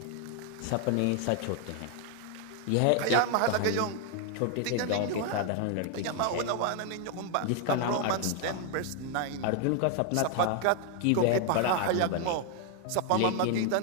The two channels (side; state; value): both; different; correlation 0.00